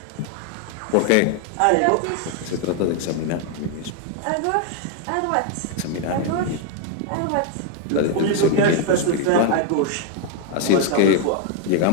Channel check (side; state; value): both; different; correlation 0.01